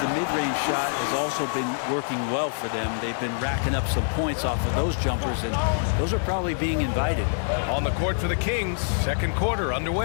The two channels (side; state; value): right; silent; 61 dB below the other